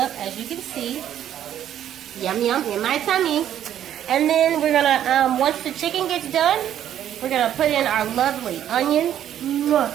as you can see. Yum yum in my tummy. And then we're gonna, once the chicken gets done, we're gonna put in our lovely onions.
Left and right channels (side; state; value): left; quieter; 10.7 dB